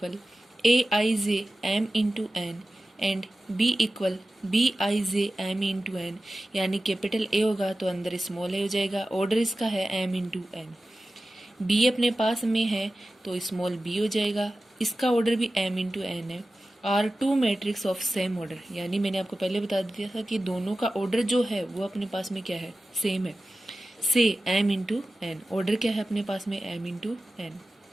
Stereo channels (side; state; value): both; normal; correlation 0.95